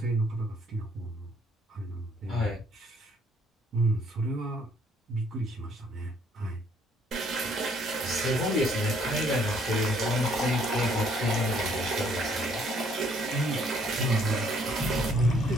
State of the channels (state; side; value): normal; both; correlation 0.65